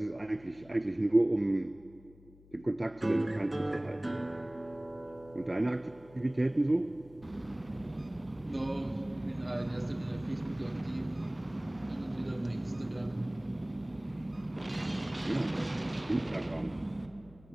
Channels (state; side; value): noise; left; hum, 24 dB below the sound